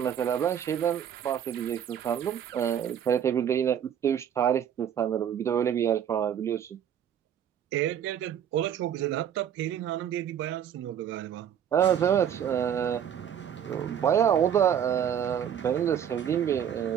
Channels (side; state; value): left; quieter; 9.1 dB